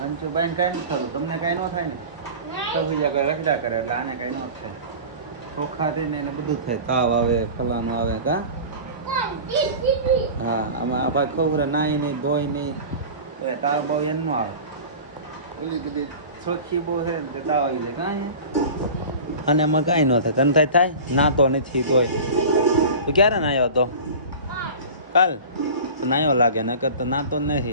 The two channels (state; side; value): inverted; both; correlation -0.35